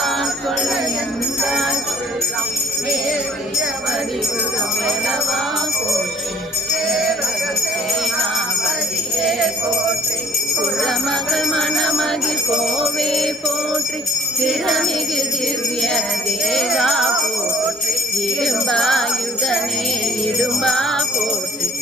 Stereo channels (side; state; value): both; normal; correlation 0.53